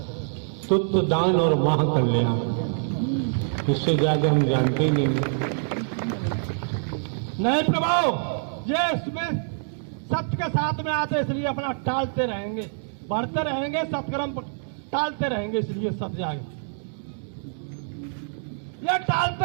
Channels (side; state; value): left; silent; digital silence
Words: तुत्व दान और माह कल्याण, इससे ज्यादा हम जानते ही नहीं। नहीं प्रभु, ये इसमें सत्य के साथ में आते इसलिए अपना टालते रहेंगे, बढ़ते रहेंगे, सत्कर्म टालते रहेंगे, इसलिए सब जाएगा। ये